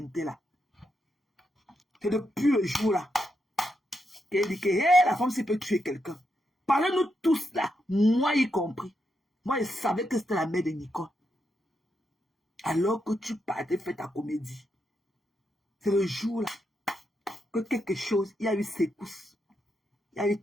là. C'est depuis le jour là qu'elle dit que hey, la femme s'il peut tuer quelqu'un. Parlez-nous tous là, moi y compris. Moi je savais que c'était la mère de Nicole. Alors que tu partais faire ta comédie. C'est le jour là que quelque chose, il y a eu secousse. Il y a eu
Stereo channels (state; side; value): normal; both; correlation 0.82